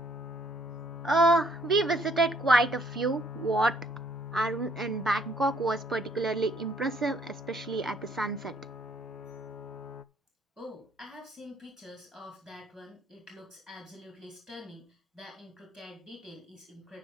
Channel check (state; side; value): normal; both; correlation 0.65